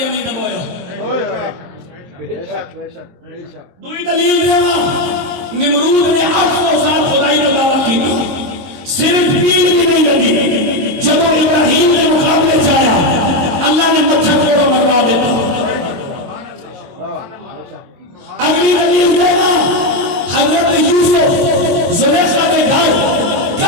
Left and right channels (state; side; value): late; left; 22 ms